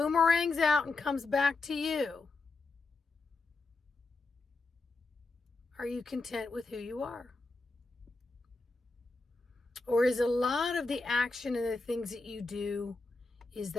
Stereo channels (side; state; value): right; quieter; 3.6 dB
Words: out and comes back to you, are you content with who you are? Or is a lot of the action and the things that you do, is